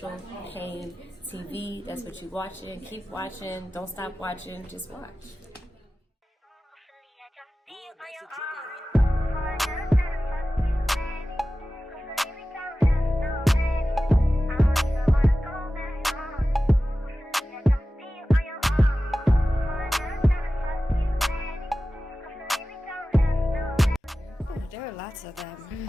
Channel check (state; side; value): normal; both; correlation 0.95